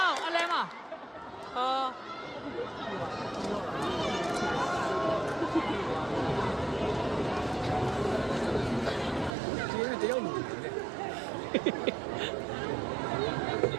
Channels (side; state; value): left; drops out; at 9.3 s